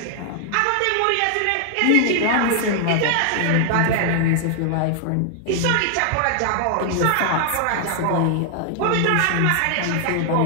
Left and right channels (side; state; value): both; different; correlation 0.00